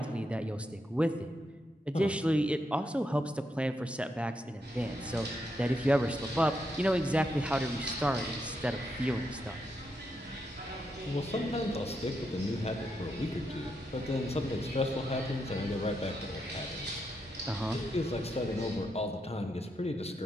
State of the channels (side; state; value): both; normal; correlation 0.82